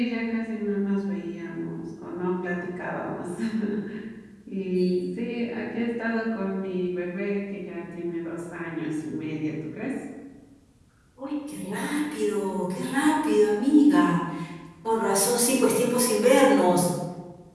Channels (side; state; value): both; identical; correlation 1.00